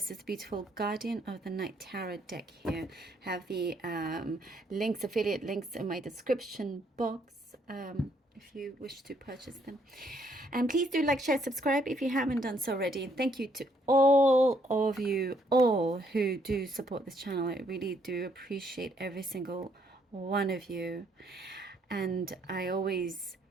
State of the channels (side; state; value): both; normal; correlation 0.70